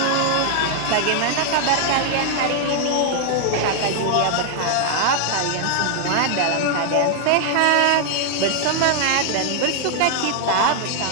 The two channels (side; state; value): both; different; correlation 0.00